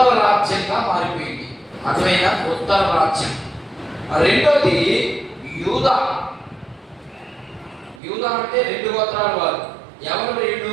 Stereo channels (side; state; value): left; drops out; at 8.0 s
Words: రాజ్యంగా మారిపోయింది. అర్థమైనా? ఉత్తర రాజ్యం. రెండోది యూదా. యూదా అంటే 2 గోత్రాల వారు. ఎవరు